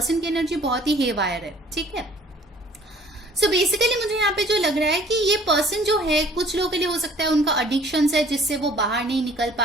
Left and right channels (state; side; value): normal; both; correlation 0.54